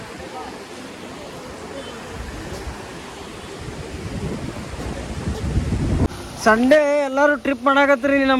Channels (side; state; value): both; identical; correlation 1.00